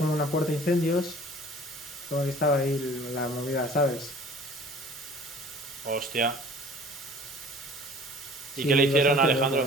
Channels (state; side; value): noise; left; hiss, 20 dB below the sound